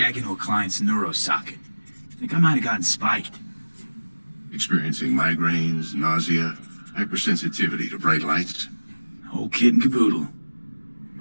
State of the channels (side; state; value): both; inverted; correlation -1.00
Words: into a client's neuro socket. Think I might have gotten spiked. Experiencing migraines, nausea, hypersensitivity to bright lights? Whole kit and caboodle.